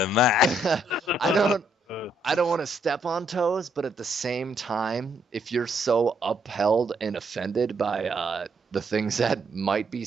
of that. I don't want to step on toes, but at the same time, if you're so upheld and offended by the things that might be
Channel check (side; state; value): both; normal; correlation 0.73